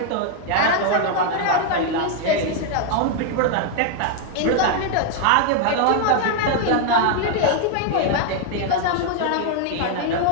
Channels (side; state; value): both; different; correlation 0.00